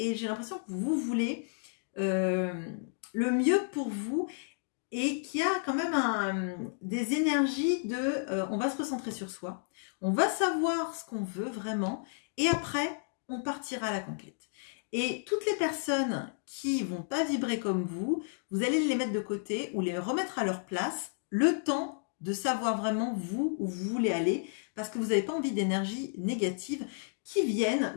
j'ai l'impression que vous voulez le mieux pour vous, et qu'il y a quand même des énergies de on va se recentrer sur soi, on va savoir ce qu'on veut vraiment, et après, on partira à la conquête. Et toutes les personnes qui vont pas vibrer comme vous allez les mettre de côté ou les remettre à leur place, le temps de savoir vraiment vous où vous voulez aller, parce que vous n'avez pas envie d'énergie négative qui viennent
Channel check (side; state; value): right; silent; digital silence